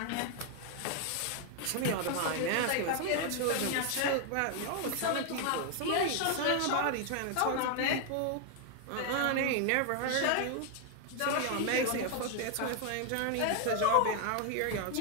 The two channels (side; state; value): both; different; correlation 0.00